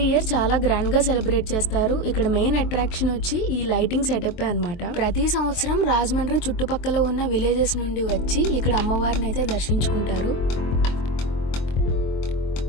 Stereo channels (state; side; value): late; right; 23 ms